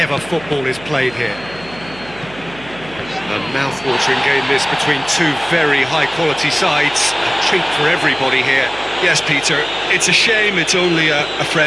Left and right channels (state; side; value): noise; right; hum, 19 dB below the sound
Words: football is played here. A mouth-watering game this between two very high-quality sides. A treat for everybody here. Yes, Peter, it's a shame it's only a